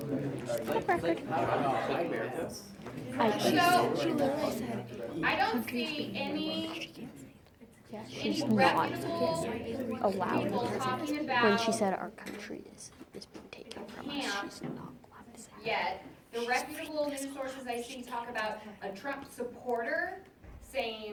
Why? She literally said, I don't see any she's not reputable allowed people because talking when about she said our country is being taken from us, she's not allowed to say that. yet. The reputable news sources I see talk about a Trump supporter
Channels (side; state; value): both; identical; correlation 1.00